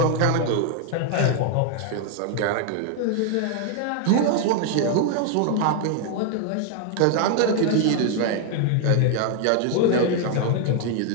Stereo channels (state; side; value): different; both; correlation 0.00